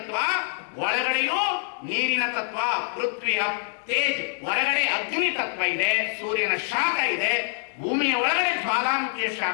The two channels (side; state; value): right; silent; 62 dB below the other